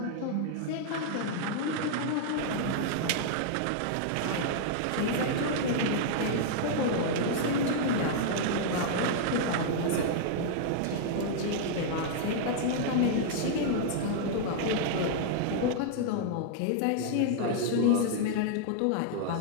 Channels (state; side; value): different; both; correlation -0.01